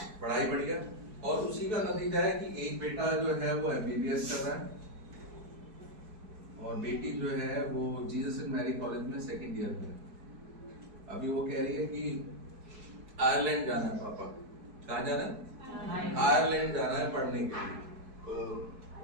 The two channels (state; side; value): late; left; 4.6 ms